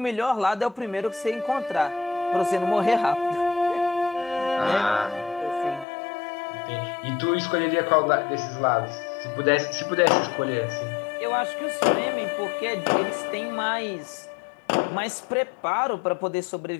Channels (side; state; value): right; drops out; at 5.9 s